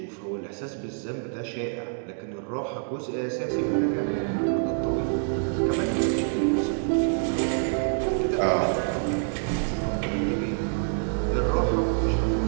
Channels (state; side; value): silent; left; 61 dB below the other